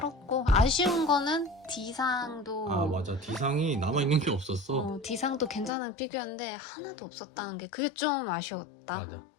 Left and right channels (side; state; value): right; drops out; at 5.7 s